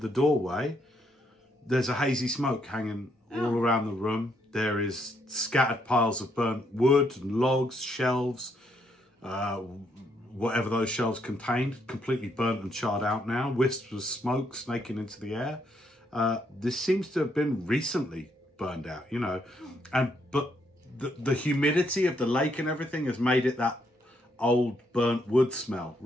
doorway, there's a hazy smoke hanging all around the room. There is scattered piles of burnt wood and logs, shelves, whatever those shelves contained, completely burnt and charred out now. Wisps of smoke snaking into the air. This seems to have been recently burned out, you know. But the humidity of the lake and everything has made it that old burnt wood smell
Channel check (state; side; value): normal; both; correlation 0.74